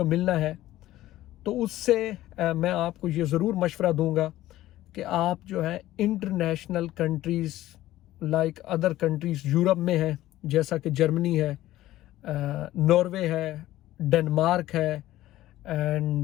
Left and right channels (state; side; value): quieter; right; 15.1 dB